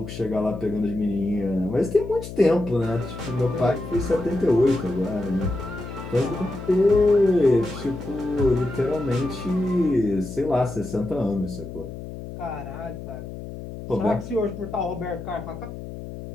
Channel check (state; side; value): noise; left; hum, 10 dB below the sound